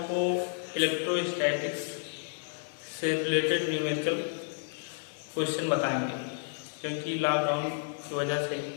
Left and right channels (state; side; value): silent; right; 57 dB below the other